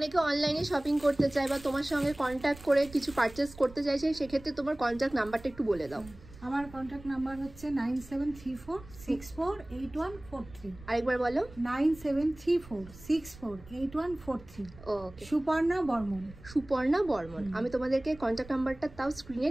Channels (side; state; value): right; noise; rumble, 19 dB below the sound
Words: অনলাইনে শপিং করতে চায় বা তোমার সঙ্গে কন্ট্যাক্ট করে কিছু পারচেস করতে চাইছে, সেক্ষেত্রে তোমার কন্ট্যাক্ট নাম্বারটা একটু বলে দাও। আমার কন্ট্যাক্ট নাম্বার হচ্ছে 9734648143। আরেকবার বলো। 9734648143। ওকে, সুপর্ণা বর্মন। সুপর্ণা বর্মন। আমি তোমাদেরকে কন্ট্যাক্ট নাম্বারটা তাও স্ক্রিনে